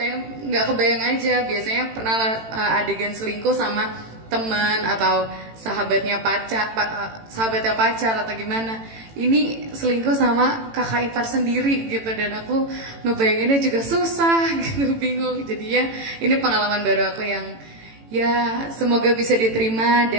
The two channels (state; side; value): late; left; 18 ms